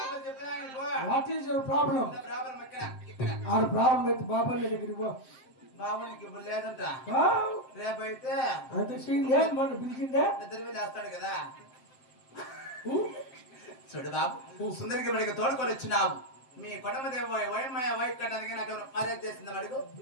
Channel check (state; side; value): late; right; 7.5 ms